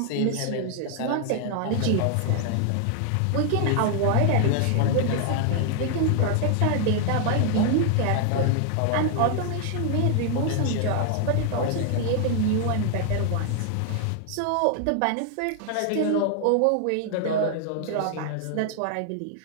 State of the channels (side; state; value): both; different; correlation 0.00